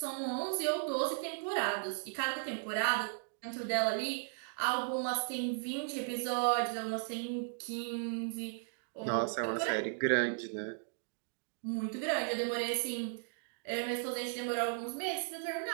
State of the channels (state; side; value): silent; left; digital silence